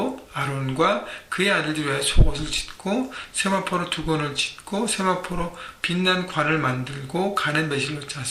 아론과 그의 아들들 위하여 속옷을 짓고 세마포로 두건을 짓고 세마포로 빛난 관을 만들고 가는 매실로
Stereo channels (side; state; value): both; identical; correlation 1.00